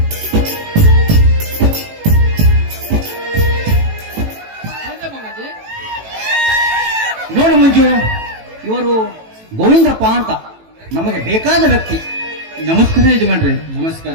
ನೋಡು ಮಂಜು, ಇವರು ಗೋವಿಂದಪ್ಪ ಅಂತ ನಮಗೆ ಬೇಕಾದ ವ್ಯಕ್ತಿ. ನಮಸ್ಕಾರ ಯಜಮಾನ್ರಿ. ನಮಸ್ಕಾರ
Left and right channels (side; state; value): left; late; 18 ms